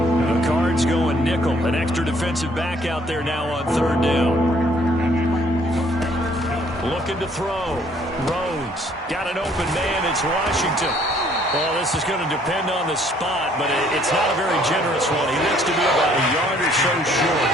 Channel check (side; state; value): both; normal; correlation 0.62